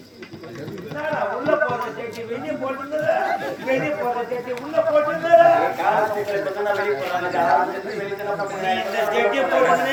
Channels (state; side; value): identical; both; correlation 1.00